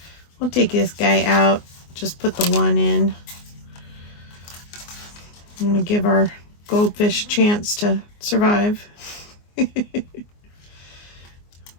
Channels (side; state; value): right; late; 24 ms